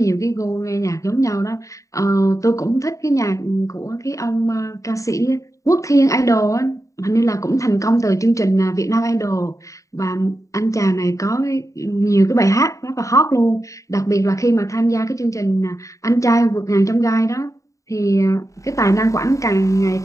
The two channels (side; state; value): right; late; 0.16 ms